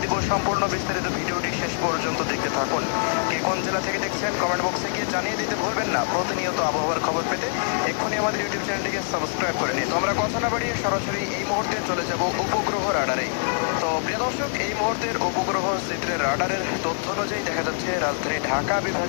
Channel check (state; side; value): silent; right; 62 dB below the other